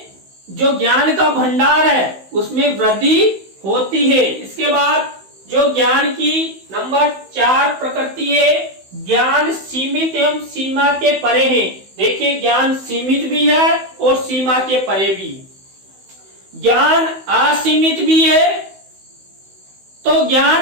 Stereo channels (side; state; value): left; late; 16 ms